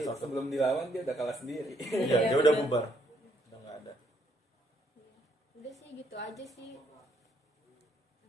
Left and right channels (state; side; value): normal; both; correlation 0.70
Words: satu. sebelum dilawan dia udah kalah sendiri. Iya, dia udah bubar, udah nggak ada. Udah sih gitu aja sih.